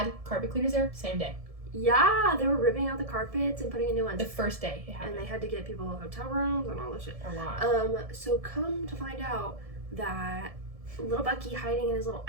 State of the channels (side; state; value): left; late; 1.7 ms